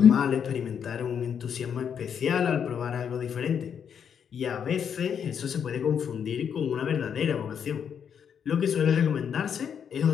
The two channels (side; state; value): right; quieter; 7.8 dB